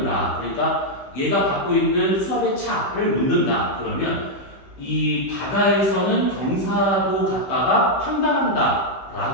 그러니까 얘가 갖고 있는 수압의 차를 묻는다. 그러면 이 바다에서는 경사도 갖다가 판단한다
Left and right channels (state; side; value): late; right; 15 ms